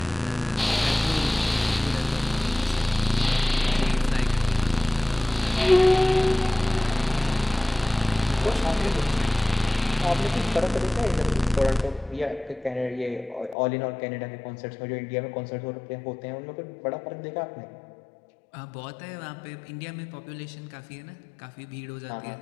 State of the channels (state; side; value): drops out; right; at 13.6 s